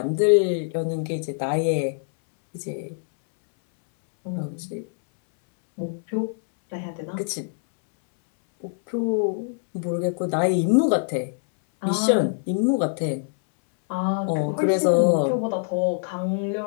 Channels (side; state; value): right; silent; 63 dB below the other